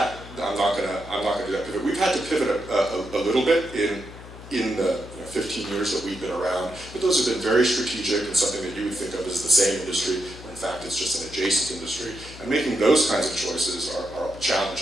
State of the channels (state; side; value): noise; left; hum, 16 dB below the sound